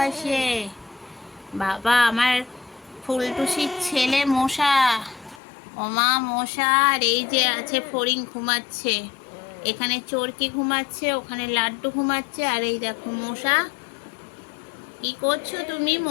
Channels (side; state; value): right; drops out; at 5.4 s